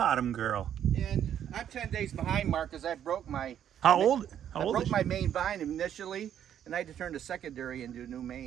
girl. And I'm 10 days behind, Mark, because I broke my... How old I broke is my main vine initially, and I had to turn the secondary into a new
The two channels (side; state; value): left; quieter; 9.8 dB